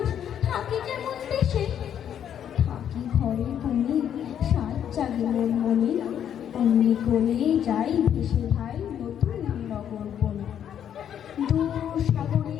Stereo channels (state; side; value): quieter; right; 9.4 dB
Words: থাকি কেমন দেশে। থাকি ঘরে কোণে সাত জাগে মন মনে, অমনি করে যাই ভেসে ভাই নতুন নগর বনে। দূর